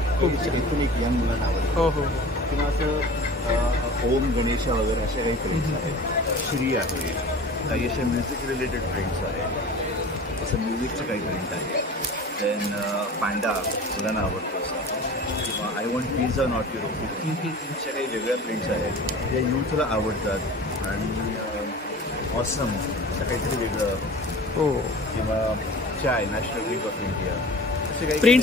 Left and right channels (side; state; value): both; normal; correlation 0.39